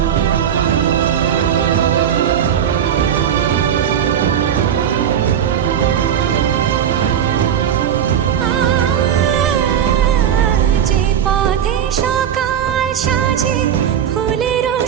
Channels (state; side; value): quieter; left; 9.1 dB